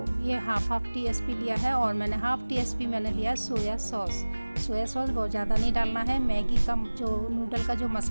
ये हाफ टीस्पून लिया है। और मैंने हाफ़ टीस्पून मैंने लिया है सोया सॉस। सोया सॉस बहुत ज़्यादा नहीं डालना है। मैगी का जो नूडल का जो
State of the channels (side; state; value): both; inverted; correlation -1.00